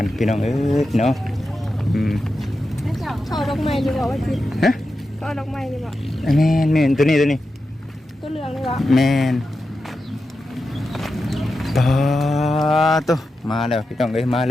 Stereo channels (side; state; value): both; normal; correlation 0.90